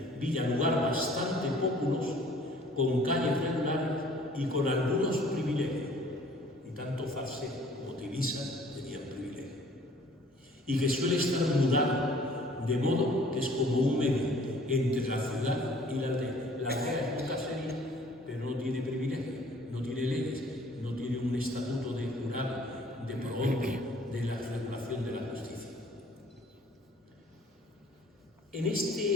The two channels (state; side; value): normal; both; correlation 0.54